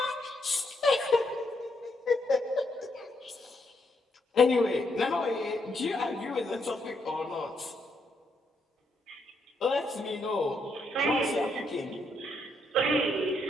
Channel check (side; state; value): both; normal; correlation 0.77